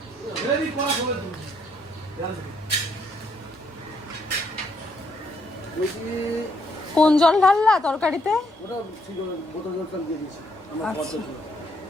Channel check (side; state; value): both; normal; correlation 0.72